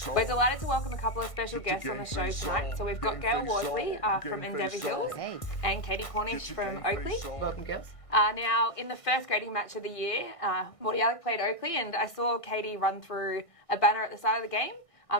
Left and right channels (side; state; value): right; late; 1.6 ms